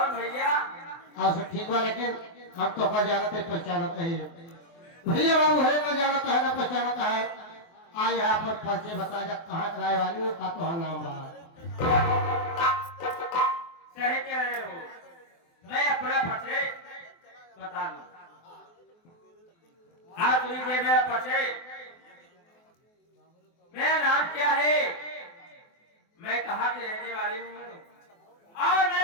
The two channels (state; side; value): late; right; 24 ms